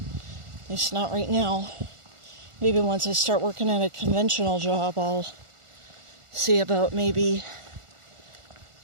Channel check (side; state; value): left; late; 1.4 ms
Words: least not right now. Maybe once I start working at a conventional job, I'll see about maybe